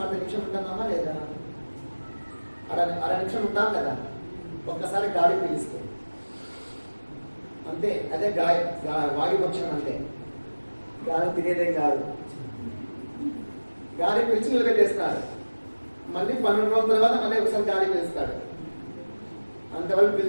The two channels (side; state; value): both; inverted; correlation -1.00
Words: 10 నిమిషం ఉంటున్నామా లేదా? అర నిమిషం ఉంటాం కదా ఒక్కసారి గాలి పీలిస్తే. అంతే, అదే వాయుభక్షణం. అంటే గాలి తినేదేం కాదు, గాలి పీల్చి నిలబెట్టేస్తాడు. మళ్ళీ 12 రోజుల తర్వాత మళ్ళీ ఒకసారి గాలి పీలుస్తాడు, అంతవరకు